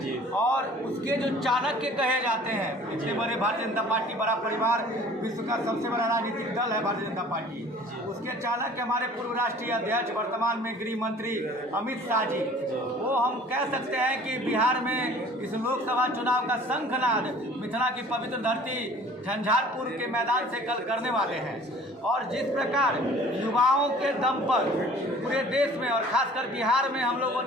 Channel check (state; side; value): normal; both; correlation 0.49